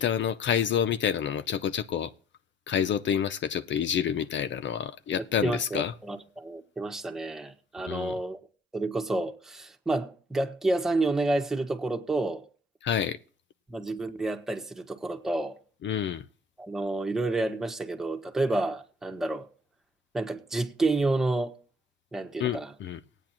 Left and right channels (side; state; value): both; normal; correlation 0.58